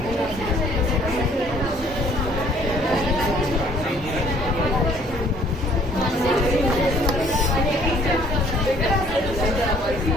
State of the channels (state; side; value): normal; both; correlation 0.59